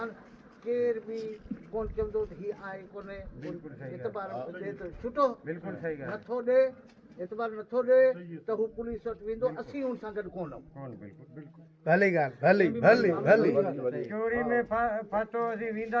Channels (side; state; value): both; identical; correlation 1.00